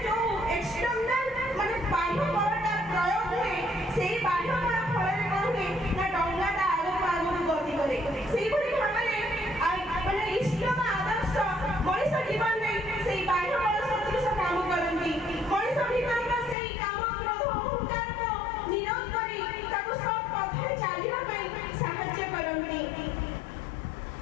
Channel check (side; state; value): right; drops out; at 16.6 s